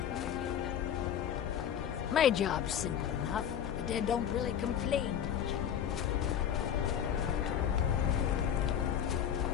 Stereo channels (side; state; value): right; quieter; 9.2 dB